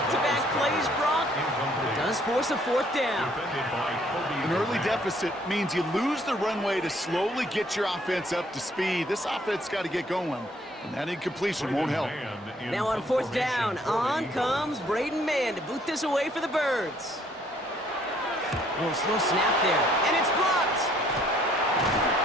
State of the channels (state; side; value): normal; both; correlation 0.63